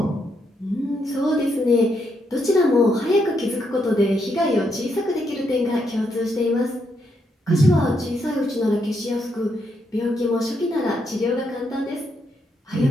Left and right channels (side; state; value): both; normal; correlation 0.78